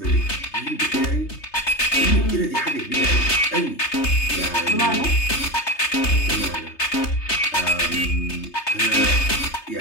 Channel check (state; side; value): late; right; 3.3 ms